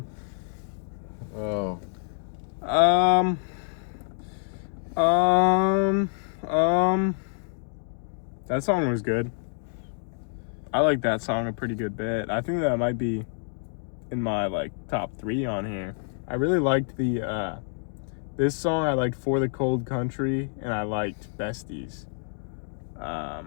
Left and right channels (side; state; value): right; silent; 60 dB below the other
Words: Oh. That song was good. I like that song a pretty good bit. I think that might be in my like top 3 on here. I really liked the this song. I liked For the Cold Country, and I liked Besties.